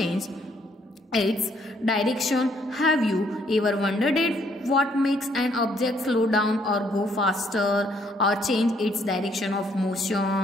its direction. Have you ever wondered what makes an object slow down or go faster or change its direction of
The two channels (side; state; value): both; normal; correlation 0.68